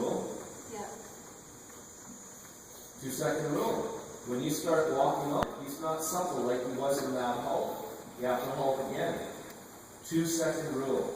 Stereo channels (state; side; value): identical; both; correlation 1.00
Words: Yeah. 2-second rule. When you start walking on, he's not supple like he was in that halt. You have to halt again. 2-second rule.